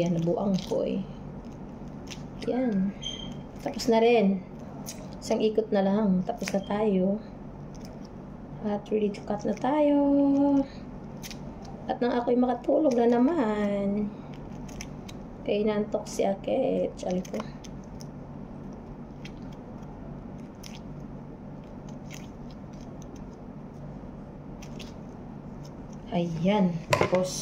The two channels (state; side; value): identical; both; correlation 1.00